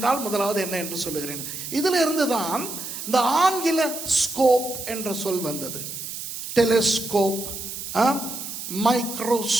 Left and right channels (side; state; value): right; noise; hiss, 8 dB below the sound